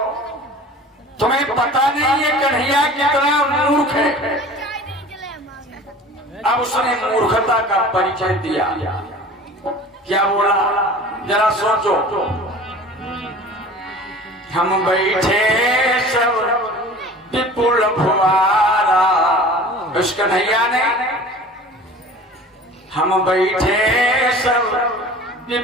तुम्हें पता नहीं है कन्हैया कितना मूर्ख है। अब उसने मूर्खता का परिचय दिया, क्या बोला जरा सोचो। हम बैठे सब विपुल फुवारा, उस कन्हैया ने हम बैठे सब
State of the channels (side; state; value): both; normal; correlation 0.42